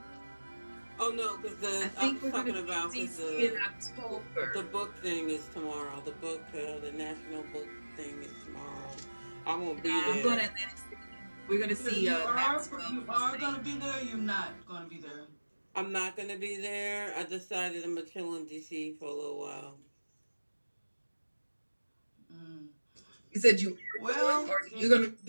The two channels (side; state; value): both; inverted; correlation -1.00